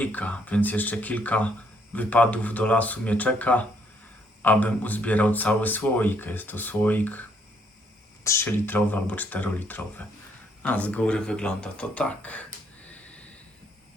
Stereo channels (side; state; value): both; normal; correlation 0.69